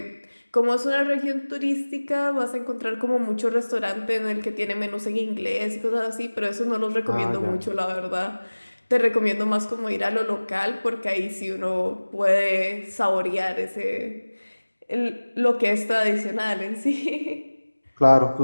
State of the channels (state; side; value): inverted; both; correlation -1.00